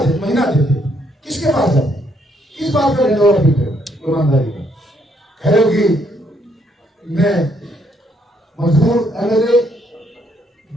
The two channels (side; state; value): both; normal; correlation 0.71